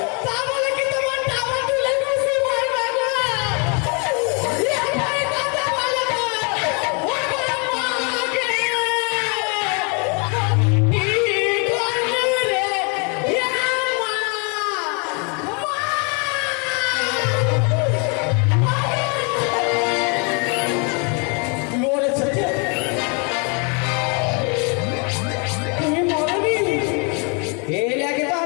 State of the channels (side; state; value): right; quieter; 35.0 dB